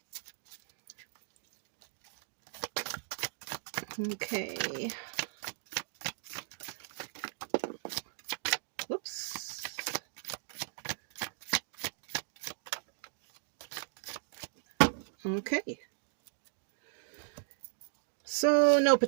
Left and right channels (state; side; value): silent; left; digital silence